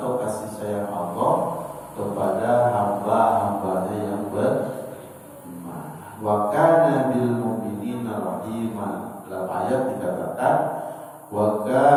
kasih sayang Allah kepada hamba-hambanya yang beriman. Wa kana bil mu'minina rahima. Dalam ayat dikatakan wa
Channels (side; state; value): both; identical; correlation 1.00